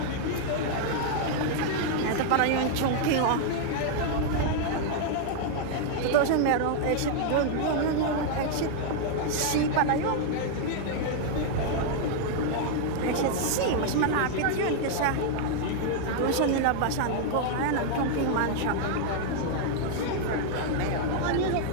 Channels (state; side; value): different; both; correlation 0.00